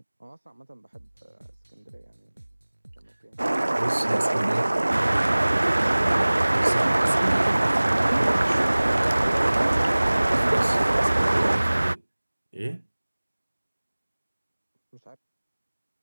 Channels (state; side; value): inverted; both; correlation -1.00